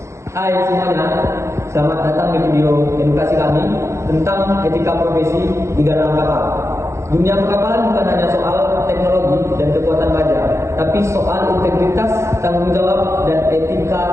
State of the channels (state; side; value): late; left; 0.14 ms